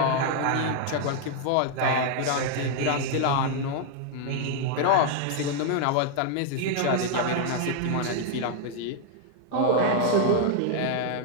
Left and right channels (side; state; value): both; different; correlation 0.00